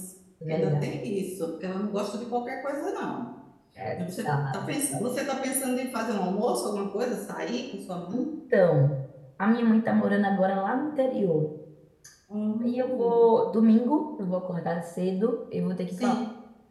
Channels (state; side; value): identical; both; correlation 1.00